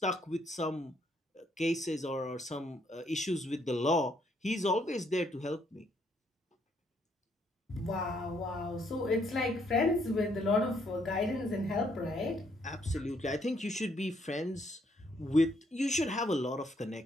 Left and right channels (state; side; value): normal; both; correlation 0.71